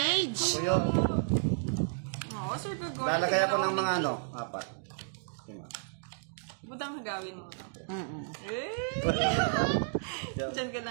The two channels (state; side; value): silent; left; digital silence